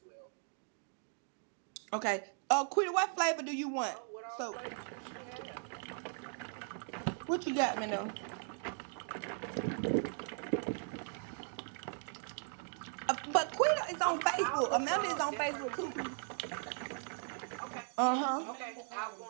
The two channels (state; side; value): silent; left; 52 dB below the other